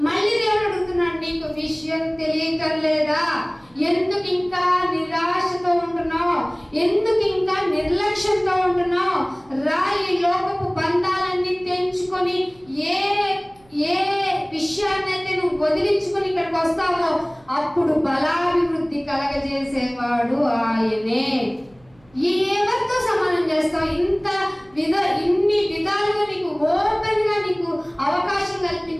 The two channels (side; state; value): right; noise; hum, 30 dB below the sound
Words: మళ్ళీ దేవుడు అడుగుతున్నాడు, నీకు విషయం తెలియటం లేదా? ఎందుకు ఇంకా నిరాశతో ఉంటున్నావు? ఎందుకు ఇంకా నిర్లక్ష్యంతో ఉంటున్నావు? ఈ లోకపు బంధాలన్నీ తెంచుకొని ఏ విషయాన్నైతే నువ్వు వదిలించుకొని ఇక్కడికి వస్తావో అప్పుడు బలాభివృద్ధి కలగజేసేవాడు ఆయనే. ఎవరితో సమానం చేస్తావు? ఇన్ని విధాలుగా నీకు ఓపెన్ గా నీకు అవకాశం